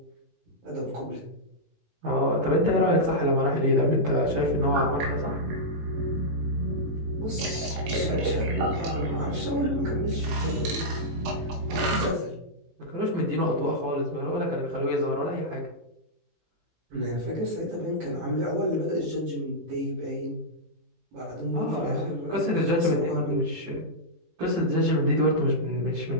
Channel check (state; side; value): late; left; 18 ms